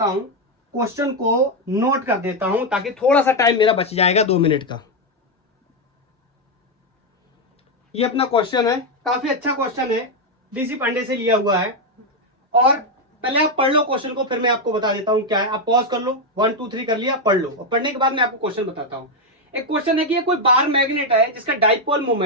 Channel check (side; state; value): both; normal; correlation 0.04